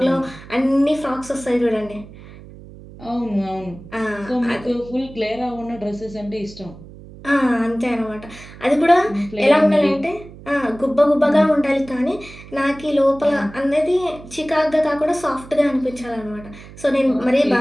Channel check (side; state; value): right; noise; hum, 18 dB below the sound